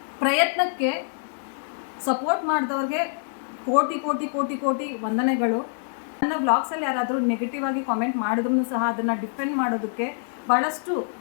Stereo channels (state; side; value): silent; right; 61 dB below the other